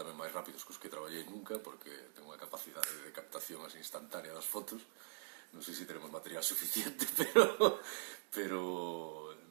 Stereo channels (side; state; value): left; silent; digital silence